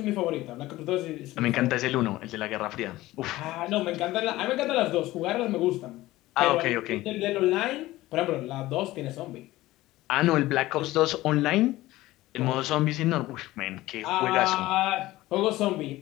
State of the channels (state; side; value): quieter; right; 17.3 dB